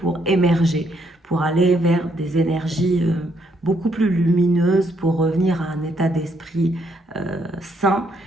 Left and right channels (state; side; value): normal; both; correlation 0.73